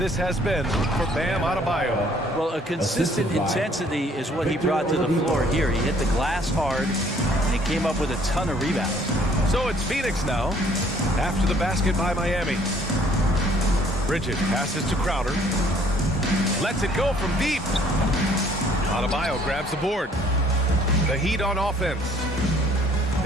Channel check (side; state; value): both; normal; correlation 0.60